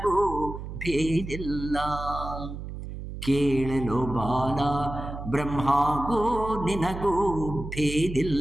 ಭೇದಿಲ್ಲ. ಕೇಳಲು ಬಾಲ ಬ್ರಹ್ಮಗೂ ನಿನಗೂ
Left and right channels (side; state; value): right; noise; hum, 9 dB below the sound